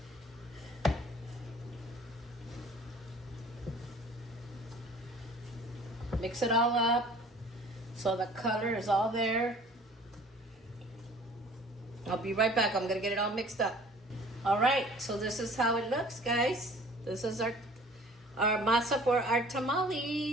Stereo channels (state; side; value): normal; both; correlation 0.50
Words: Mix it all up so the color is all there. I'll be right back. I'm gonna get it all mixed up. All right, so this is how it looks, guys. This is our masa for our